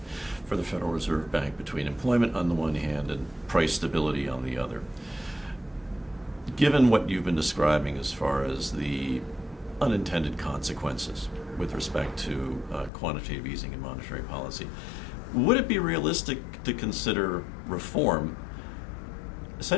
for the Federal Reserve Bank between employment on the one hand and price stability on the other. Given what you've been describing as far as the unintended consequences with respect to quantitative easing and monetary policy, would it be realistic to consider reform,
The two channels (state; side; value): drops out; right; at 12.9 s